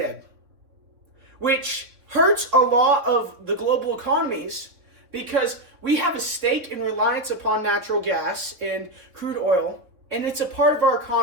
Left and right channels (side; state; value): left; late; 3.6 ms